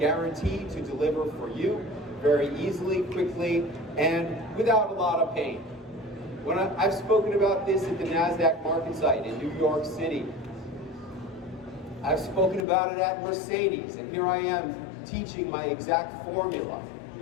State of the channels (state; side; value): drops out; right; at 12.7 s